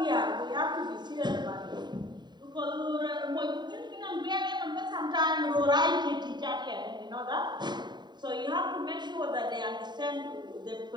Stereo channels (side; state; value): left; late; 0.21 ms